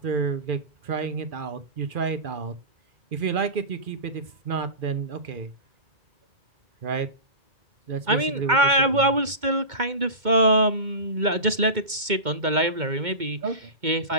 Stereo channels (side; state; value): left; late; 2.2 ms